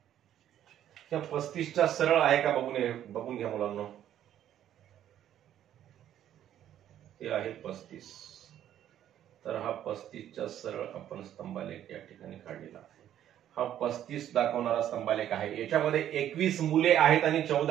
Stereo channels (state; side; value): quieter; left; 11.2 dB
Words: त्या 35च्या सरळ आहे का बघून घ्या मुलांना. हे आहे 35. तर हा 35च्या सरळ आपण स्तंभालेख या ठिकाणी काढलेला आहे. हा 35 दाखवणारा स्तंभालेख आहे. याच्यामध्ये 21 मुले आहेत आणि